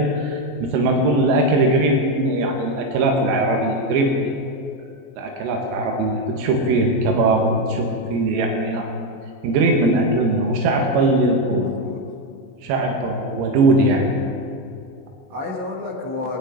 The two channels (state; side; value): late; left; 22 ms